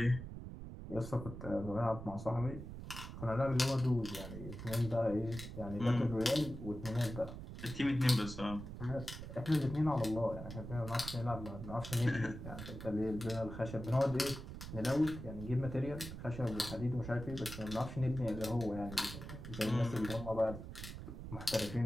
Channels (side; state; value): right; noise; rumble, 9 dB below the sound